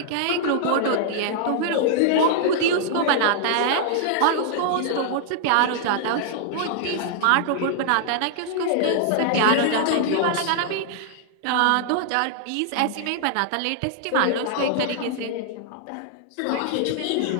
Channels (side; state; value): both; different; correlation -0.01